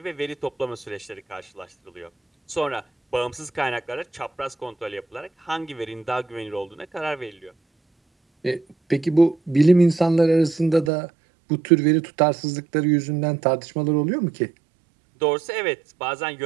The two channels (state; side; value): drops out; left; at 10.9 s